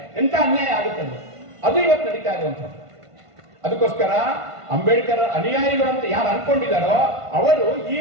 ಎಂತ ಅನ್ಯಾಯ ಆಗುತ್ತೆ ಅದು ಇವತ್ತು ನಡೀತಾ ಇರುವಂಥದ್ದು. ಅದಕ್ಕೋಸ್ಕರ ಅಂಬೇಡ್ಕರ್ ಅನುಯಾಯಿಗಳು ಅಂತ ಯಾರು ಅನ್ಕೊಂಡಿದ್ದಾರೋ ಅವರು ಈ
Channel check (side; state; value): left; late; 1.5 ms